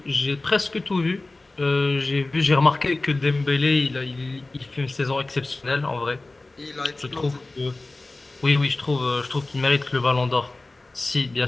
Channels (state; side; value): quieter; right; 3.1 dB